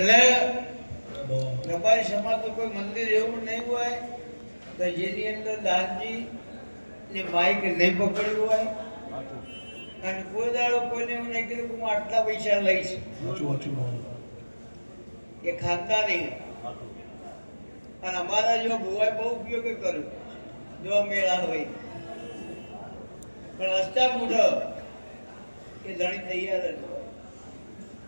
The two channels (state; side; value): inverted; both; correlation -1.00